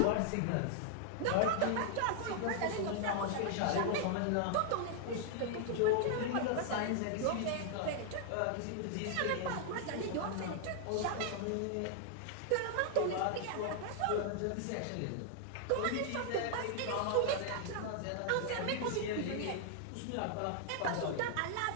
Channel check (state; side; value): different; both; correlation -0.01